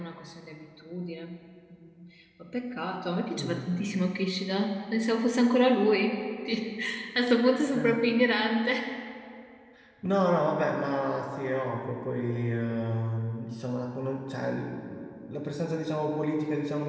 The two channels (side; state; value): both; identical; correlation 1.00